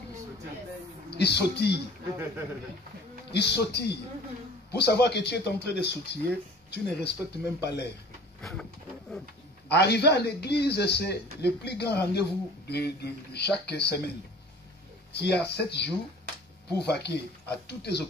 Ils sautillent. Ils sautillent. Pour savoir que tu es en train de sautiller, tu ne respectes même pas l'air. Arriver à l'église, c'est le plus grand rendez-vous de chaque semaine. Tu as 7 jours pour vaquer à toutes tes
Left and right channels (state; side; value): normal; both; correlation 0.46